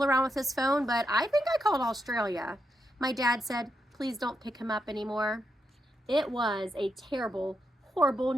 around with his phone, but I think I called Australia. My dad said, please don't pick him up anymore. It was a terrible, horrible,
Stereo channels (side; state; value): both; normal; correlation 0.83